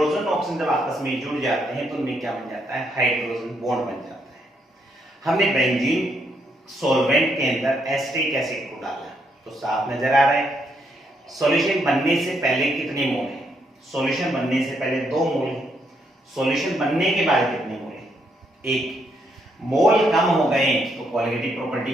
ऑक्सीजन जब आपस में जुड़ जाते हैं तो उनमें क्या बन जाता है हाइड्रोजन बॉन्ड बन जाता है। हमने बेंजीन सॉल्वेंट के अंदर एसिटिक एसिड को डाला तो साफ नजर आ रहा है। सॉल्यूशन बनने से पहले कितने मोल है, सॉल्यूशन बनने से पहले 2 मोल है, सॉल्यूशन बनने के बाद कितने मोल है 1। मोल कम हो गए तो कोलिगेटिव प्रॉपर्टी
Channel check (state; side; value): normal; both; correlation 0.76